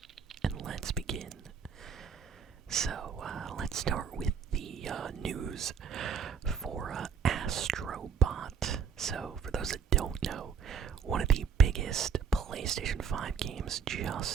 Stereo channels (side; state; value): left; quieter; 6.6 dB